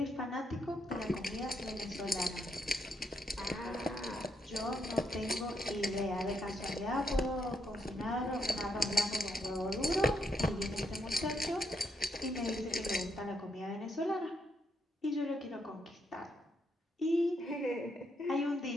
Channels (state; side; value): normal; both; correlation 0.77